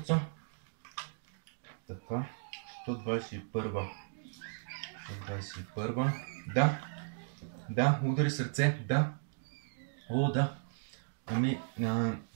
Така, 121. 121. Да, удари сърце, да. О, да. Ами,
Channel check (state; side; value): silent; left; digital silence